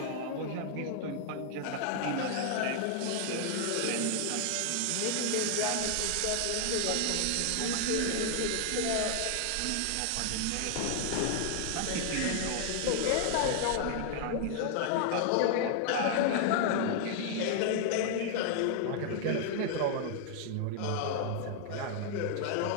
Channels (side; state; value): both; different; correlation 0.00